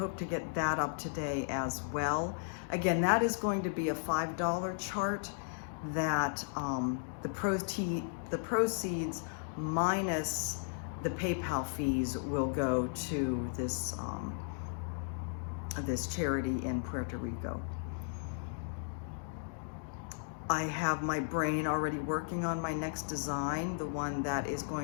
to get that up today as well. Again, that is going to be a $5 chart that the proceeds minus the PayPal fees will go to this, this charity in Puerto Rico. I have my brain already working on my next design, the one that is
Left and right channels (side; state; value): right; silent; digital silence